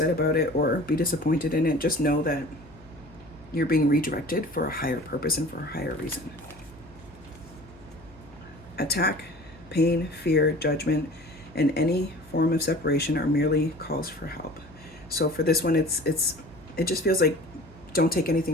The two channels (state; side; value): noise; left; hum, 24 dB below the sound